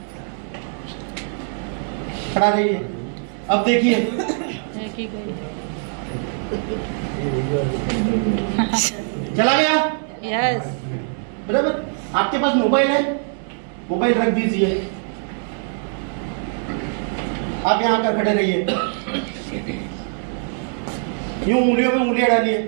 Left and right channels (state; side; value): silent; left; 57 dB below the other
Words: खड़ा रहिए। अब देखिए चला गया। यस। बराबर। आपके पास मोबाइल है, मोबाइल रख दीजिए, आप यहां आकर खड़े रहिए, यूं उंगलियों में उंगलियां डालिए,